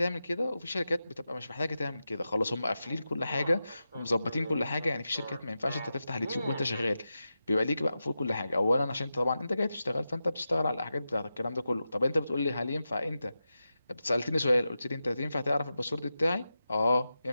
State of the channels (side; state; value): both; inverted; correlation -0.91